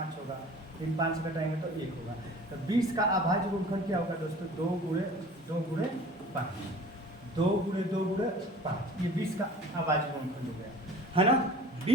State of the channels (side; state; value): both; normal; correlation 0.44